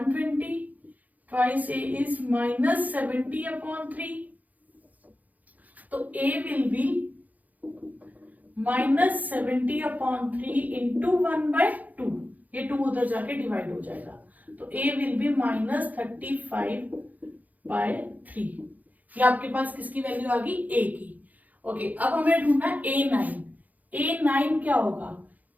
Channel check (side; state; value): left; late; 0.079 ms